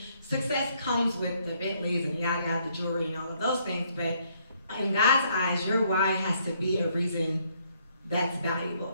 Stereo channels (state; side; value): inverted; both; correlation -0.69